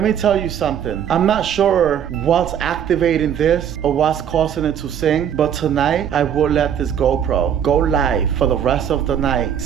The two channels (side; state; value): left; quieter; 9.0 dB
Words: me tell you something. I'm not sure what's activating this or what's causing it to sing, but tonight I will let this GoPro go live for the rest of the night.